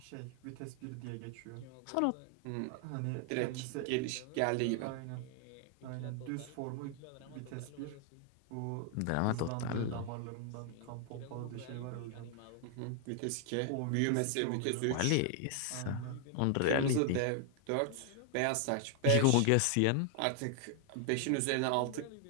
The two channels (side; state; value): both; different; correlation 0.00